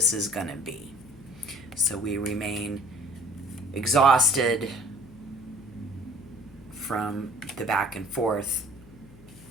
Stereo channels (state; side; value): noise; left; hum, 22 dB below the sound